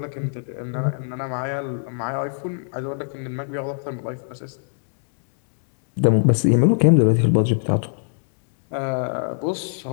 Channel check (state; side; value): silent; right; digital silence